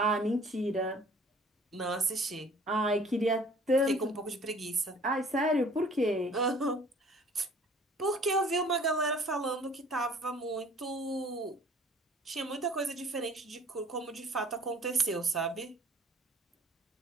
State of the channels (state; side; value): normal; both; correlation 0.53